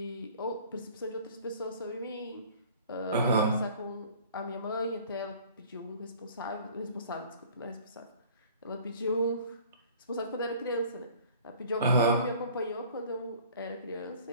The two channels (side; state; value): both; inverted; correlation -0.49